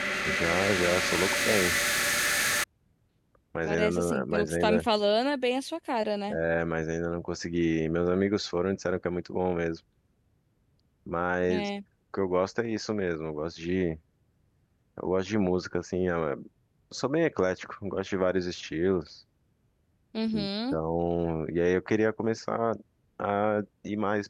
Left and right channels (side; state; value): both; identical; correlation 1.00